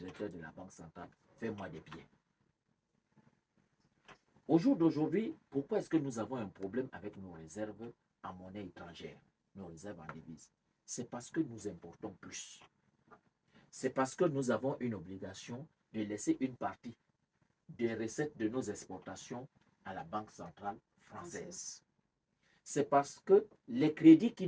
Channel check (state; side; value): identical; both; correlation 1.00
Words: de la Banque centrale, fais-moi des billets. Au jour d'aujourd'hui, pourquoi est-ce que nous avons un problème avec nos réserves en monnaie étrangère, nos réserves en devises? C'est parce que nous importons plus. C'est parce que nous avons une obligation de laisser une partie des recettes de nos exportations à la Banque centrale française. C'est parce que les crédits qui